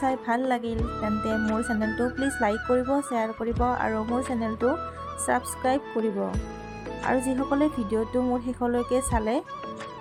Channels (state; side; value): identical; both; correlation 1.00